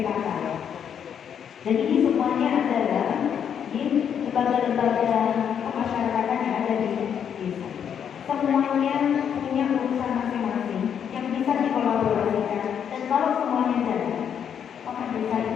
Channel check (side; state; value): right; quieter; 8.2 dB